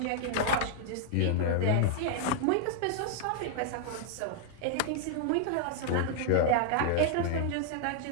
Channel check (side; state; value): both; different; correlation 0.00